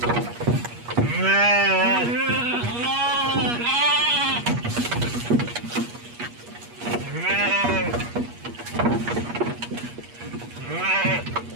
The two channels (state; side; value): late; left; 8.4 ms